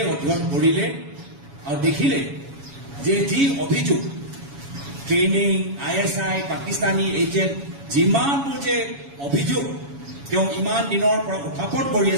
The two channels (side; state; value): left; late; 7.2 ms